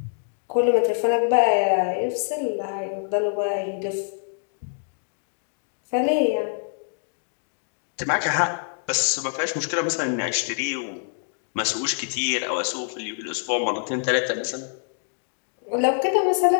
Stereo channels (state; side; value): silent; right; digital silence